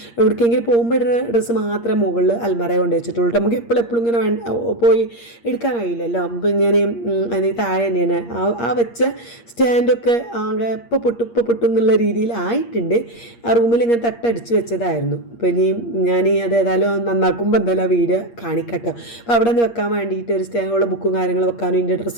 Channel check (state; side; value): late; right; 8.5 ms